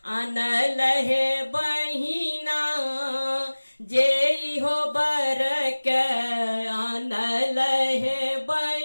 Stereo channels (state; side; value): inverted; both; correlation -1.00